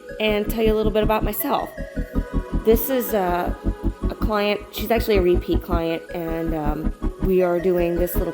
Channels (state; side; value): identical; both; correlation 1.00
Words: and tell you a little bit about myself. This is a client. She's actually a repeat client, and we are doing this little